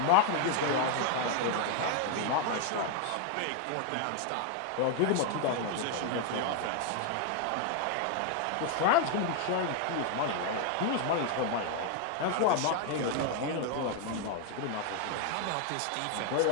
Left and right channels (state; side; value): different; both; correlation 0.00